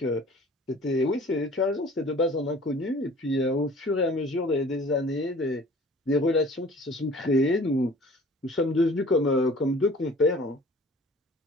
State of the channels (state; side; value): normal; both; correlation 0.48